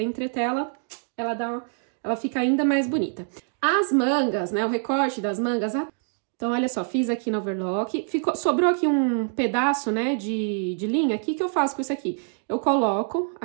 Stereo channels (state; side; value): silent; left; digital silence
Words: a entretela, ela fica ainda mais bonita. As mangas, né, o recorte das mangas, então, olha só, fiz aqui no overlock, sobrou aqui um pedaço, né, de linha, o que eu faço com isso aqui? Eu coloco